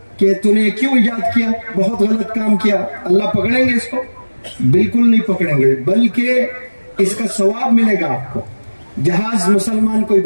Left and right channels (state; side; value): inverted; both; correlation -1.00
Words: کہ تو نے کیوں ایجاد کیا، بہت غلط کام کیا، اللہ پکڑیں گے اس کو؟ بالکل نہیں پکڑیں گے، بلکہ اس کا ثواب ملے گا آپ کو۔ جہاز مسلمان کوئی